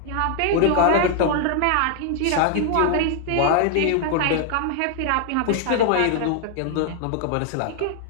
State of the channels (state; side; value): different; both; correlation 0.00